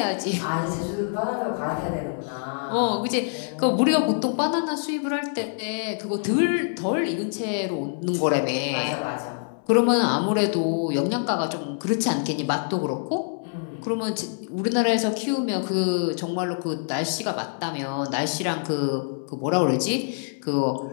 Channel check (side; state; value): right; silent; 61 dB below the other